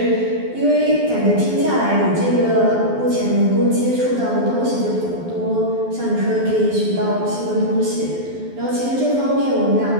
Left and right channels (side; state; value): left; late; 12 ms